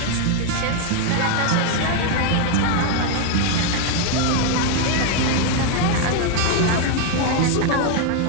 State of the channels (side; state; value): both; different; correlation 0.00